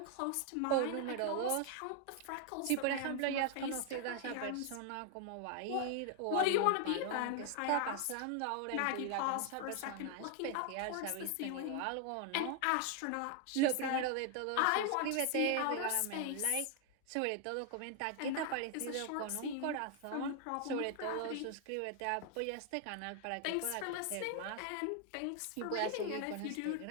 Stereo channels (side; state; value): both; different; correlation 0.00